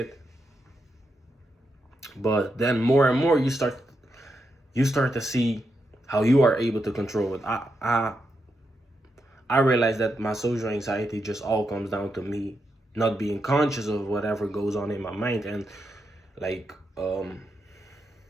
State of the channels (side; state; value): both; normal; correlation 0.84